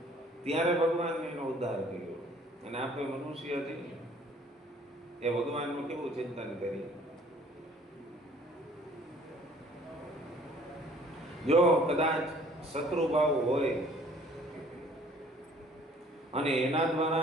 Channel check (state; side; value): normal; both; correlation 0.56